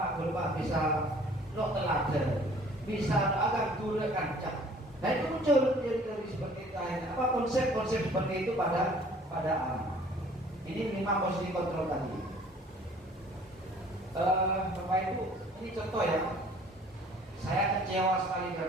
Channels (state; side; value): normal; both; correlation 0.53